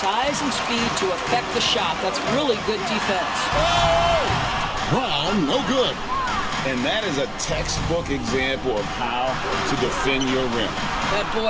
and speed to affect the shot. That's really good defense. Brown, no good. And that is a textbook example of how to defend your rim. That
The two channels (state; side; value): identical; both; correlation 1.00